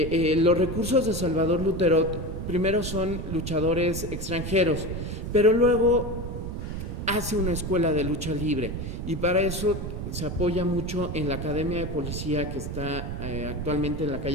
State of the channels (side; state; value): right; noise; rumble, 5 dB below the sound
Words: recursos de Salvador Luterot primero son luchadores extranjeros, pero luego hace una escuela de lucha libre, y para eso se apoya mucho en la Academia de Policía, que está actualmente en la